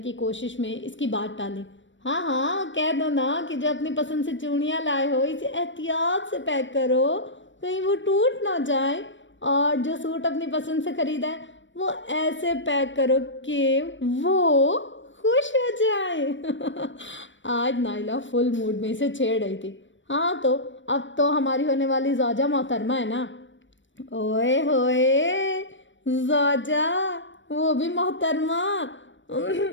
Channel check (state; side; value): late; right; 0.55 ms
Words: کوشش میں اس کی بات ٹالی۔ ہاں کہہ دو نا کہ جو اپنی پسند سے چوڑیاں لائے ہو اسے احتیاط سے پیک کرو، کہیں وہ ٹوٹ نہ جائے، اور جو سوٹ اپنی پسند سے خریدا ہے وہ ایسے پیک کرو کہ وہ خوش ہو جائے۔ آج نائلہ فل موڈ میں اسے چھیڑ رہی تھی۔ ہاں تو اب تو ہماری ہونے والی زوجہ محترمہ ہے نا۔ اوئے ہوئے زوجہ، وہ بھی محترمہ۔